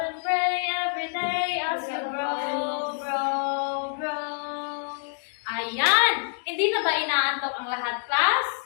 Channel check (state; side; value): silent; right; digital silence